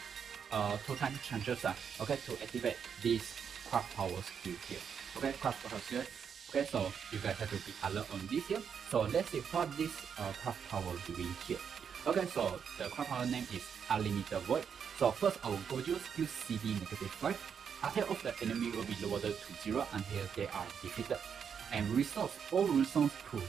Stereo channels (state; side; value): quieter; left; 7.2 dB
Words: time chances okay, to activate this craft power skill here. Okay, craft power skill. Okay, so you guys have to be alert on this here. So let's see what this craft power doing here. Okay, so the craft power name is Unlimited Void. So first, our Gojo skill CD -5. Attack of the enemy will be lowered to 0 until they are defeated, and restores all runestones to